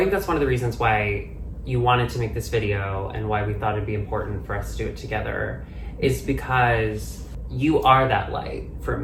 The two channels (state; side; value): identical; both; correlation 1.00